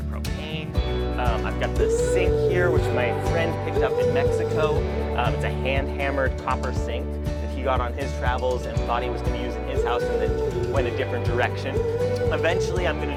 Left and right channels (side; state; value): both; identical; correlation 1.00